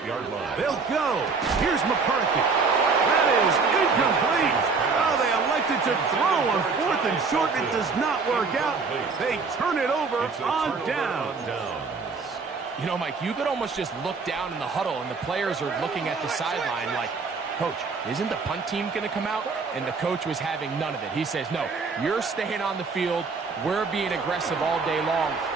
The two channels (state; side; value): quieter; left; 4.7 dB